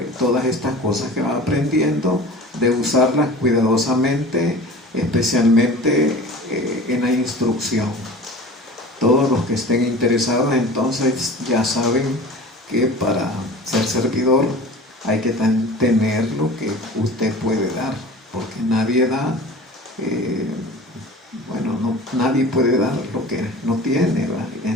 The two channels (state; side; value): normal; both; correlation 0.39